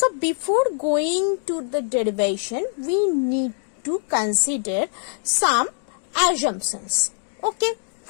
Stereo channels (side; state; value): right; silent; digital silence